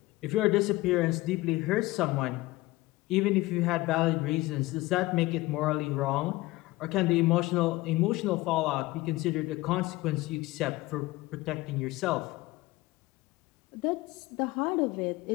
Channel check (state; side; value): quieter; right; 19.5 dB